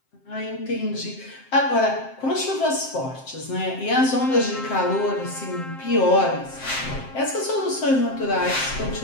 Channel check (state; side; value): late; right; 7.6 ms